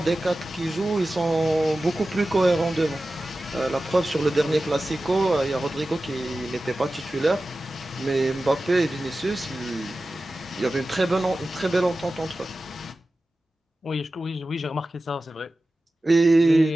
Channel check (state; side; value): normal; both; correlation 0.95